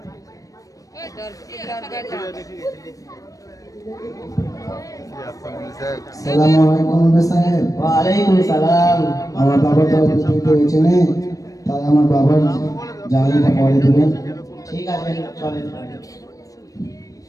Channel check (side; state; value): right; late; 0.16 ms